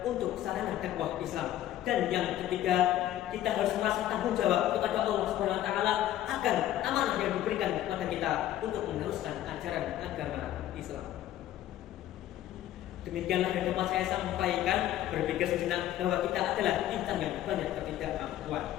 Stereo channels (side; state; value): right; quieter; 12.9 dB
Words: untuk sarana dakwah Islam. Dan yang ketiga, kita harus merasa tanggung jawab kepada Allah Subhanahu wa taala akan amanah yang diberikan kepada kita untuk meneruskan ajaran agama Islam. Demikianlah yang dapat saya sampaikan. Berpikir sejenak bahwa kita adalah insan yang banyak